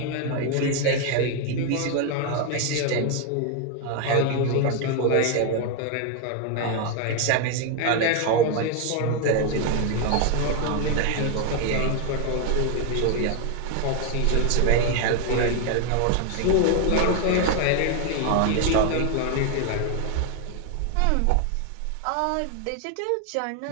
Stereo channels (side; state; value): both; different; correlation 0.01